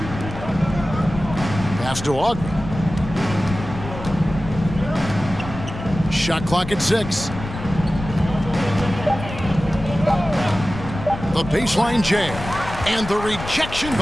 Pass to Ogden. Shot clock at 6. The baseline jam. And the rejection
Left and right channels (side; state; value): left; noise; rumble, 10 dB below the sound